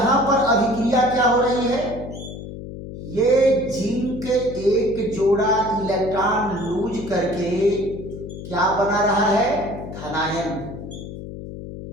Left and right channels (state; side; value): noise; left; hum, 11 dB below the sound